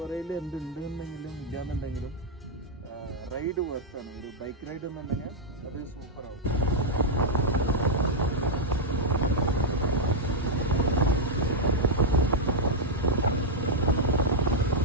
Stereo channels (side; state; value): both; normal; correlation -0.03